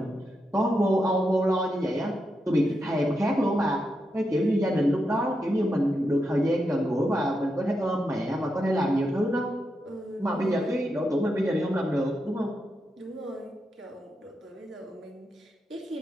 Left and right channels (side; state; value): both; normal; correlation 0.85